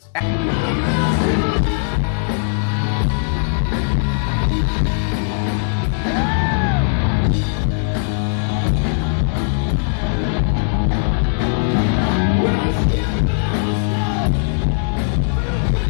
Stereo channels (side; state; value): right; silent; digital silence